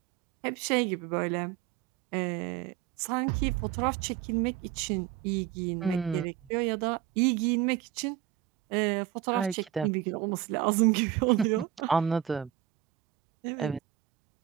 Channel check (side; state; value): left; quieter; 12.0 dB